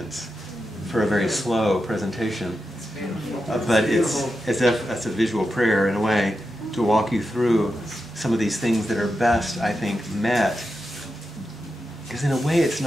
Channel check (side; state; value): both; normal; correlation 0.89